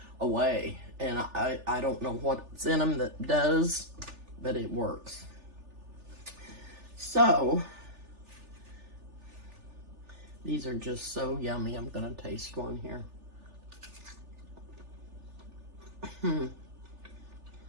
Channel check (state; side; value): late; left; 3.4 ms